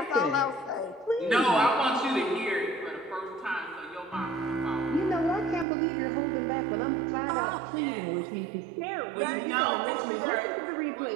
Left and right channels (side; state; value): left; drops out; at 5.7 s